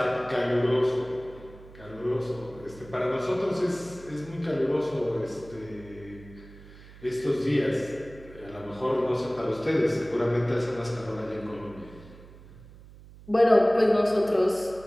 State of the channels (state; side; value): noise; right; hum, 20 dB below the sound